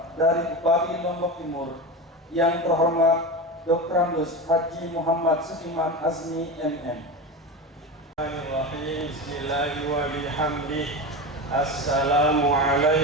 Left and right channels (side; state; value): both; normal; correlation 0.24